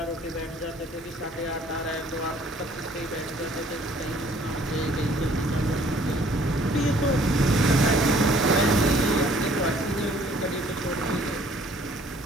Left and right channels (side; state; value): both; normal; correlation 0.58